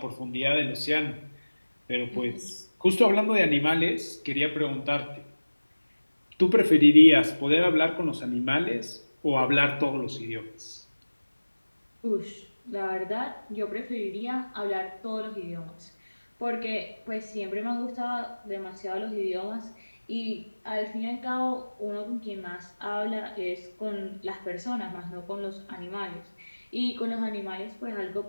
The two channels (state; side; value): inverted; both; correlation -1.00